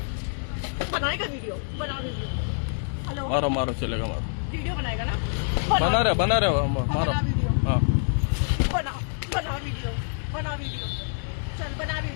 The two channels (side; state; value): right; silent; digital silence